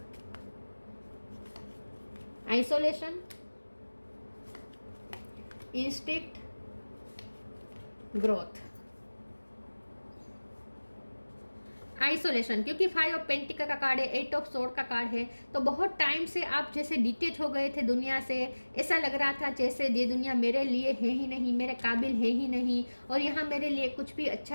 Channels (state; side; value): inverted; both; correlation -1.00